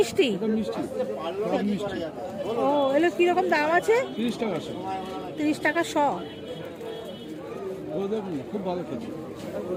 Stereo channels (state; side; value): identical; both; correlation 1.00